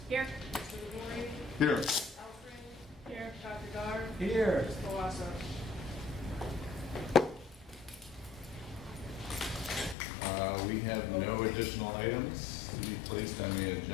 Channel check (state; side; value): drops out; right; at 10.0 s